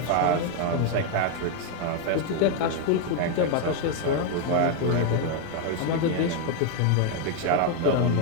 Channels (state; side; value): different; both; correlation 0.01